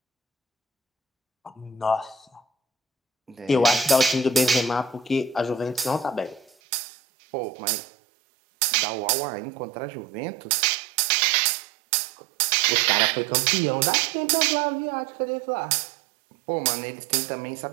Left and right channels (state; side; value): drops out; left; at 6.5 s